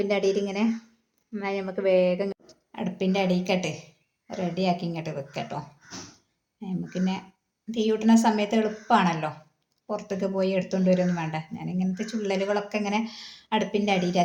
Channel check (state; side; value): identical; both; correlation 1.00